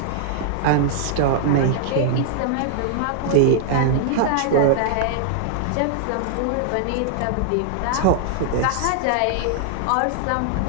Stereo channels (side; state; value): both; different; correlation 0.00